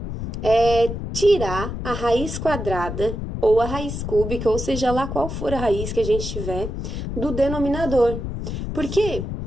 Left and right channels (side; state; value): left; noise; rumble, 5 dB below the sound